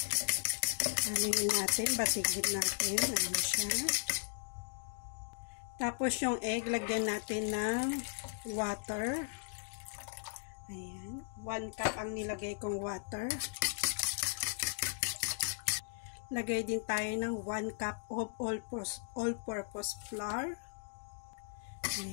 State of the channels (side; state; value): right; silent; digital silence